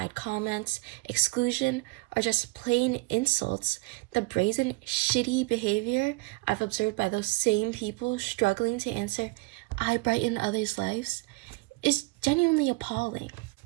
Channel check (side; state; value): left; quieter; 25.0 dB